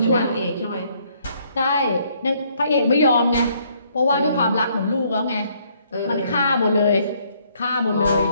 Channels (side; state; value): both; inverted; correlation -0.67